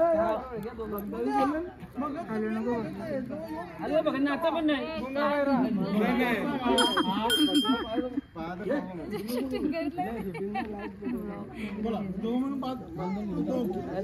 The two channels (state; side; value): identical; both; correlation 1.00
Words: अरे बघ ना आता पण नाही बोला 2 म्हणून 5